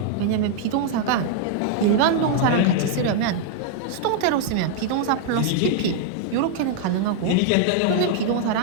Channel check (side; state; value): both; different; correlation 0.00